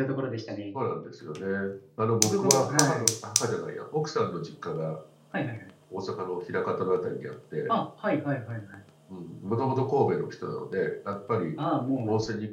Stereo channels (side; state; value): both; identical; correlation 1.00